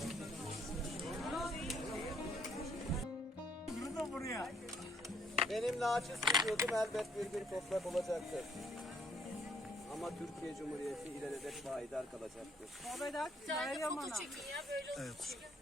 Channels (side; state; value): both; normal; correlation 0.67